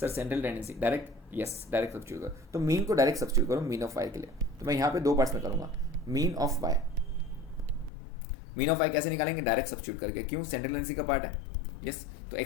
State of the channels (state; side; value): drops out; right; at 7.9 s